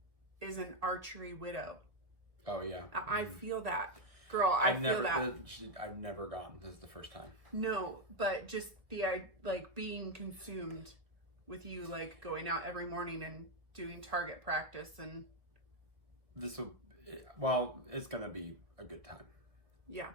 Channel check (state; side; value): late; left; 1.5 ms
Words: is an archery widow. Oh yeah. I feel that. Girl, I've never gone. This is the first time. No, but just the like being consumed with you, like going out every morning and doing target practice, and it's gonna be a good time. Yeah.